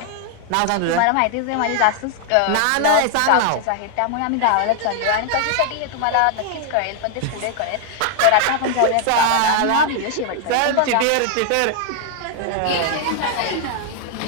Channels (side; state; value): both; different; correlation 0.00